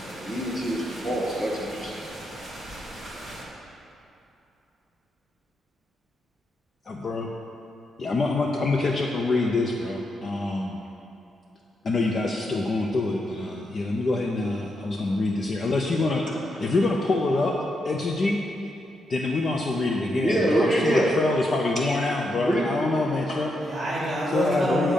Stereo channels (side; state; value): both; normal; correlation 0.82